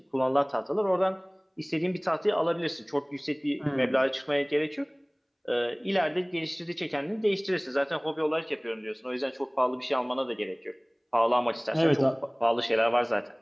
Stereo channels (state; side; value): identical; both; correlation 1.00